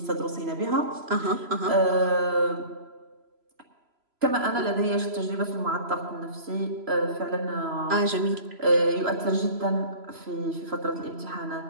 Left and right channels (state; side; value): late; left; 3.0 ms